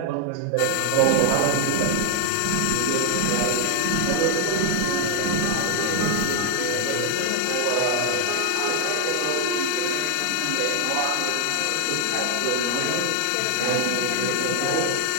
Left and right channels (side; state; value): both; different; correlation 0.00